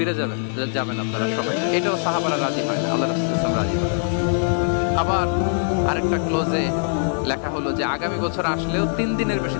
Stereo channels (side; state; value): right; silent; digital silence